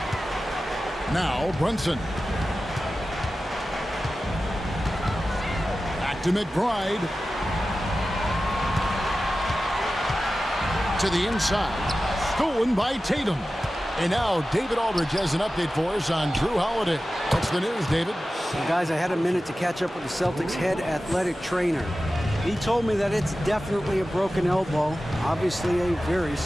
Now Brunson. Back to McBride. To the inside. Stolen by Tatum. And now David Aldridge has an update for us on Drew Holiday. What's the news, David? Well, guys, I had a minute to catch up with the Celtics head athletic trainer. He told me that it's definitely a broken elbow, obviously a very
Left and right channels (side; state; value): both; normal; correlation 0.94